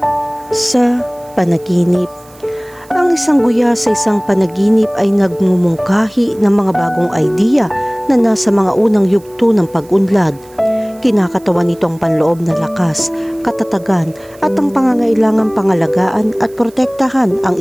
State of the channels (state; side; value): noise; right; hiss, 27 dB below the sound